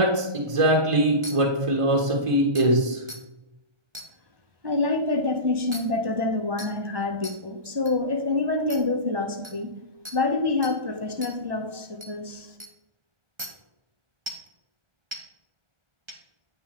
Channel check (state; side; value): late; left; 1.3 ms